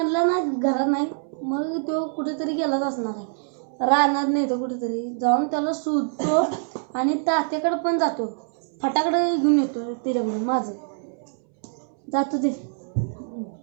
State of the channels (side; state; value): left; silent; 62 dB below the other